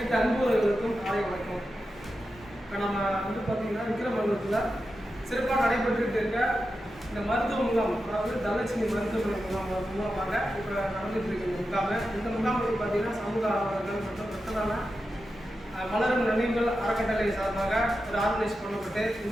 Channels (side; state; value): both; normal; correlation 0.90